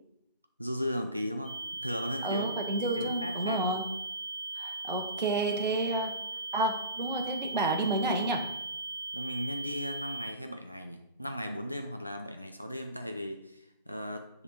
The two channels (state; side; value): inverted; both; correlation -0.40